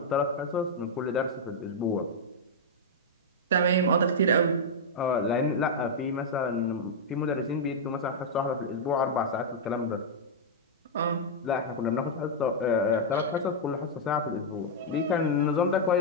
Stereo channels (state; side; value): normal; both; correlation -0.04